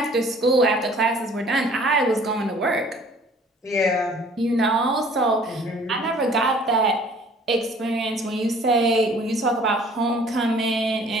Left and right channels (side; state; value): both; normal; correlation 0.53